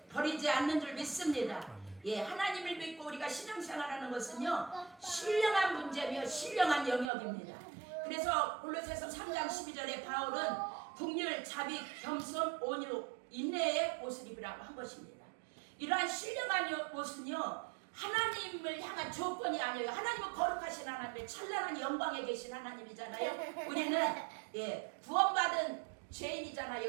버리지 않는 줄 믿습니다. 예, 하나님을 믿고 우리가 신앙생활하는 것은요 신령한 문제며 신령한 영역입니다. 그래서 골로새서 3장 12절에 바울은 긍휼, 자비, 겸손, 온유, 인내의 옷을 입으라고 한 것입니다. 이러한 신령한 옷은요 하나님을 향한 조건이 아니에요. 하나님은 거룩하신 하나님, 찬란한 영광에 계신 하나님이잖아요. 우리는 구원받은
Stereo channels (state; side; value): drops out; left; at 7.1 s